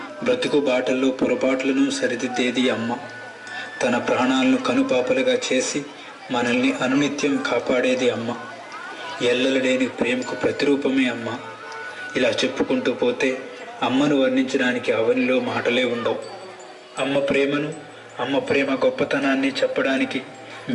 బ్రతుకు బాటల్లో పొరపాట్లను సరిదిద్దేది అమ్మ. తన ప్రాణాలను కనుపాపలుగా చేసి మనల్ని అనునిత్యం కాపాడేది అమ్మ. ఎల్లలేని ప్రేమకు ప్రతిరూపమే అమ్మ. ఇలా చెప్పుకుంటూ పోతే అమ్మను వర్ణించడానికి అవనిలో మాటలే ఉండవు. అమ్మ ప్రేమను, అమ్మ ప్రేమ గొప్పతనాన్ని చెప్పడానికి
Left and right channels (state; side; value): identical; both; correlation 1.00